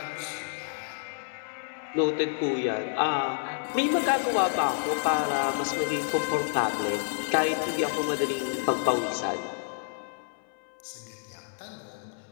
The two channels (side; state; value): right; silent; 59 dB below the other